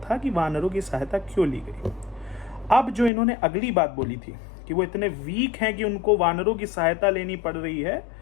कि वानरों की सहायता क्यों ली गई। अब जो इन्होंने अगली बात बोली थी कि वो इतने वीक हैं कि उनको वानरों की सहायता लेनी पड़ रही है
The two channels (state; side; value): drops out; right; at 3.1 s